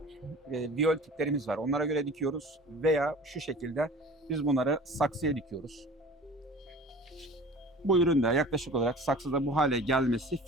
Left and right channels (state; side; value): normal; both; correlation 0.42